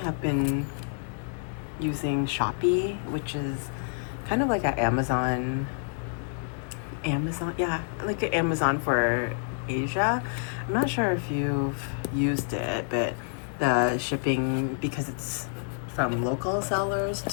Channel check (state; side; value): silent; right; digital silence